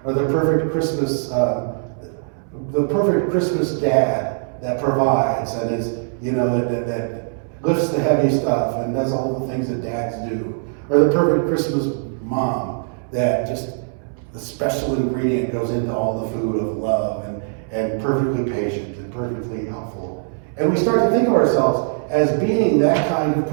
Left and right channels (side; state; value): left; silent; 65 dB below the other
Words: or the perfect Christmas dad that provides and is, you know, that lifts the heavy stuff and does all the things that dads do, or the perfect Christmas mom that just the special ingredient goes into all the food of love and perfectly patient and perfectly helpful. And we start to think of ourselves as being that kind of